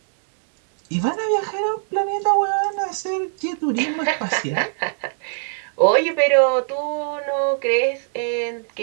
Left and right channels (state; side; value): silent; left; 64 dB below the other